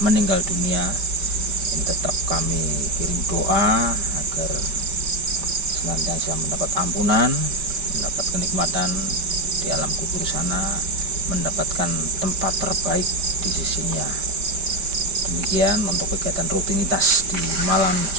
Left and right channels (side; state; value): left; late; 5.0 ms